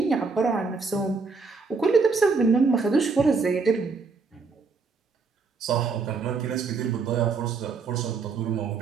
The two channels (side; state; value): left; quieter; 4.6 dB